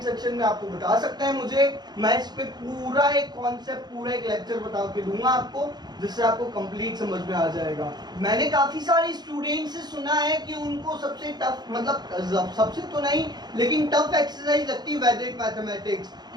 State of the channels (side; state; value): left; late; 0.20 ms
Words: सेक्शन में आपको बता सकते हैं मुझे, मैं इस पे पूरा एक कॉन्सेप्ट, पूरा एक लेक्चर बता के दूंगा आपको, जिससे आपको कंप्लीट समझ में आ जाएगा। मैंने काफी सारे स्टूडेंट से सुना है कि उनको सबसे टफ, मतलब सबसे तो नहीं लेकिन टफ एक्सरसाइज लगती है वैदिक मैथमेटिक्स,